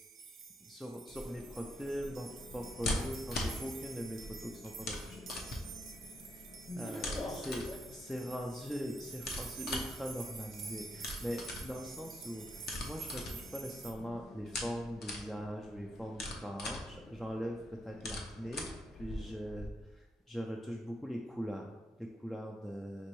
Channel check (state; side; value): normal; both; correlation 0.80